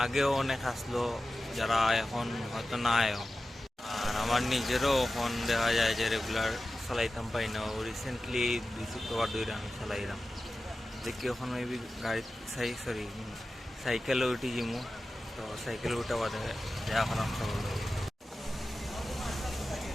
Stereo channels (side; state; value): both; normal; correlation 0.94